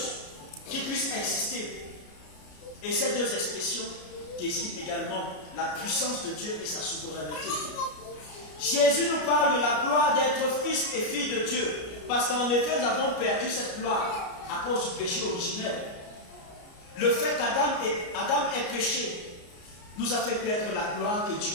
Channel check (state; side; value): late; right; 33 ms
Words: qui puisse exister. Et ces deux expressions désignent également la puissance de Dieu et sa souveraineté. Jésus nous parle de la gloire d'être fils et fille de Dieu, parce qu'en effet nous avons perdu cette gloire à cause du péché originel. Le fait qu'Adam ait péché nous a fait perdre la gloire que